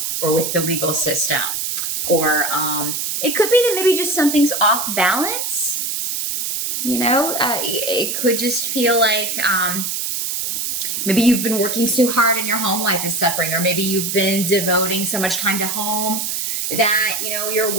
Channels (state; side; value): noise; right; hiss, 2 dB below the sound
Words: or with the legal system, or it could be that maybe just something's off balance. It could just feel like maybe you've been working so hard and your home life is suffering, or maybe you've been devoting so much time to home that your